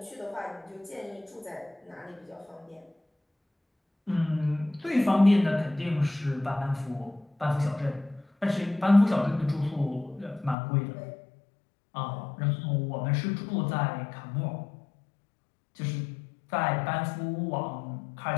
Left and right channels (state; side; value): drops out; right; at 10.6 s